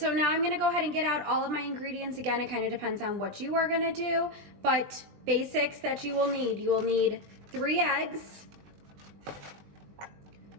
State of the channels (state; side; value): late; left; 20 ms